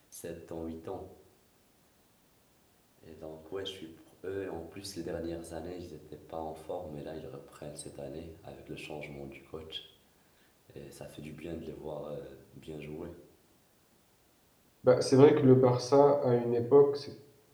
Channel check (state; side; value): identical; both; correlation 1.00